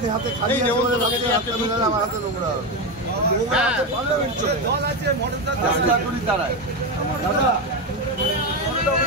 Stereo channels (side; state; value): both; normal; correlation 0.13